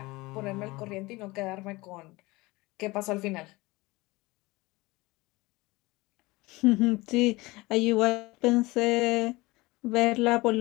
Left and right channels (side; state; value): right; quieter; 21.8 dB